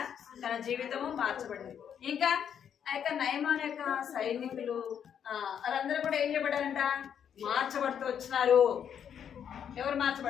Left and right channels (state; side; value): quieter; right; 8.5 dB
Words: తన జీవితము మార్చబడింది. ఇంకా ఆ యొక్క నయమాన్ యొక్క సైనికులు వాళ్ళందరూ కూడా ఏం చేయబడ్డారంట? మార్చబడుతూ వచ్చినారు. ఎవరు